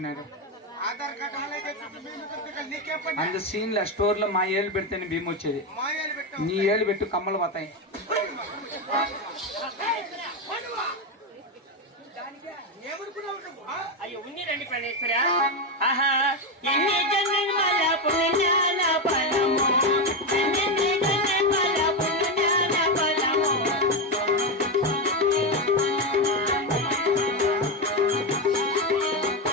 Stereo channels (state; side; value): normal; both; correlation 0.10